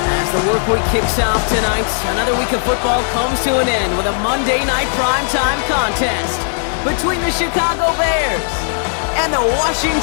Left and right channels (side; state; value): right; silent; digital silence